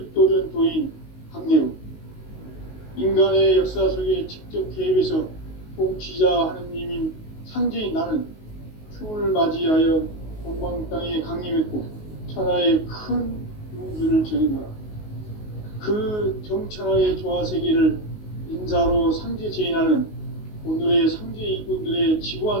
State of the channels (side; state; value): right; late; 19 ms